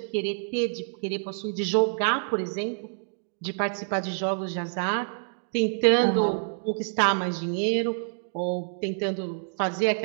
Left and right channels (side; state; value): left; silent; digital silence